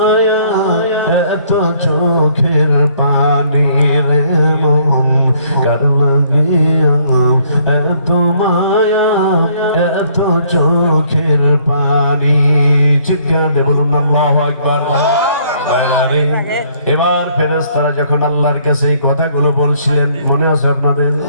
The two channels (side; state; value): both; inverted; correlation -0.64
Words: এত চোখের পানি রে মন, কার লাগিয়া এত মায়া, এত চোখের পানি। চিৎকার দিয়ে বলুন আল্লাহু আকবার। এবার ফেরেশতারা যখন আল্লাহর কাছে এই কথাগুলো বলছিলেন, মনে আছে আপনাদের?